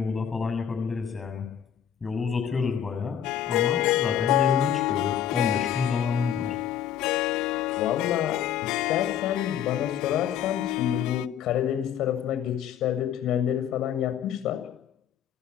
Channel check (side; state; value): right; quieter; 9.4 dB